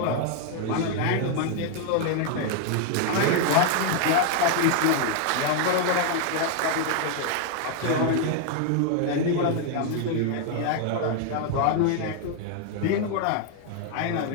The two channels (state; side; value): different; both; correlation 0.00